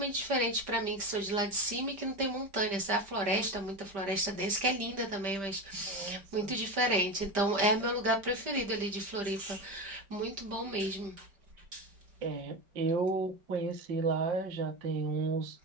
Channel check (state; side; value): late; left; 5.1 ms